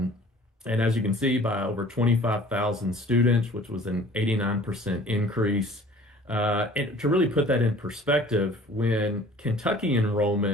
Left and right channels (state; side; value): normal; both; correlation 0.49